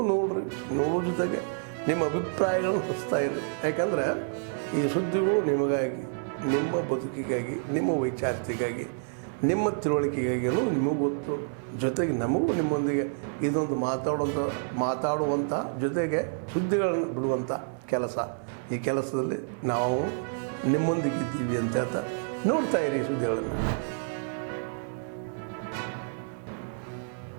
ನೋಡೋ ಜೊತೆಗೆ ನಿಮ್ಮ ಅಭಿಪ್ರಾಯಗಳನ್ನು ಹಚ್ತಾ ಇರಿ. ಯಾಕಂದರೆ ಈ ಸುದ್ದಿಗಳು ನಿಮಗಾಗಿ, ನಿಮ್ಮ ಬದುಕಿಗಾಗಿ, ನಿಮ್ಮ ವೈಚಾರಿಕೆಗಾಗಿ, ನಿಮ್ಮ ತಿಳುವಳಿಕೆಗಾಗಿಯೂ ನಿಮಗೂ ಗೊತ್ತು. ಜೊತೆಗೆ ನಮಗೂ ನಿಮ್ಮೊಂದಿಗೆ ಇದೊಂದು ಮಾತಾಡುವಂಥ ಜೊತೆಗೆ ಸುದ್ದಿಗಳನ್ನು ಬಿಡುವಂಥ ಕೆಲಸ. ಈ ಕೆಲಸದಲ್ಲಿ ನಾವು ನಿಮ್ಮೊಂದಿಗಿದ್ದೀವಿ ಅಂತ ಹೇಳ್ತಾ ನೋಡ್ತಾ ಇರಿ ಈ ಸುದ್ದಿಗಳನ್ನು. ಬರೇ ಜಿಲ್ಲಾಧಿಕಾರಿ ಅಷ್ಟೇ ಅಲ್ಲ, ಅವರು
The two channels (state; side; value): silent; left; 55 dB below the other